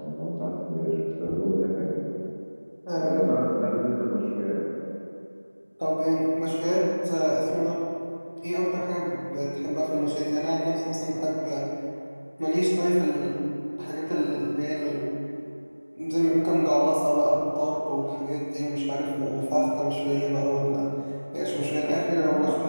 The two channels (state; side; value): inverted; both; correlation -1.00